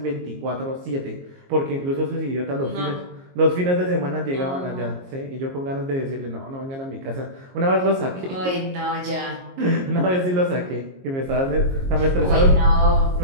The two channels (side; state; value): left; late; 22 ms